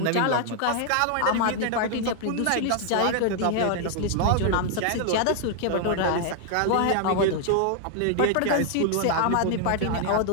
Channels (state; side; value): different; both; correlation 0.00